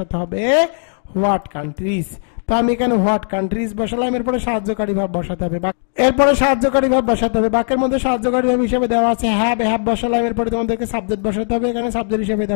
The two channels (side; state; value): right; silent; digital silence